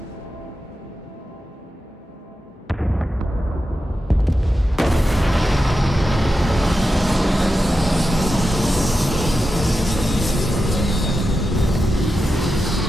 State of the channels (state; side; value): normal; both; correlation 0.90